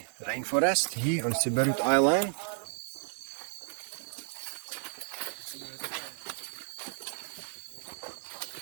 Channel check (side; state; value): left; silent; digital silence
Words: rainforest here on Siberut Island.